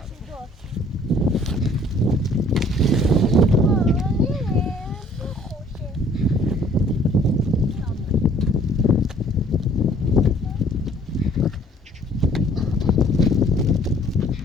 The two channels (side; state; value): both; normal; correlation 0.57